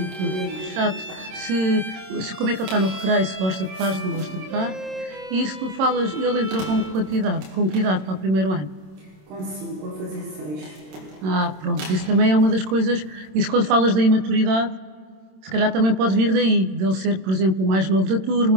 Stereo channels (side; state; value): left; late; 27 ms